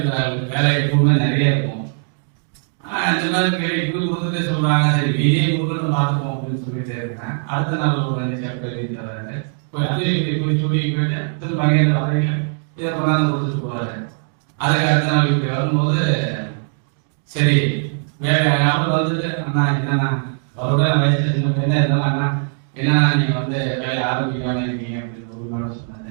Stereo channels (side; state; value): left; silent; 55 dB below the other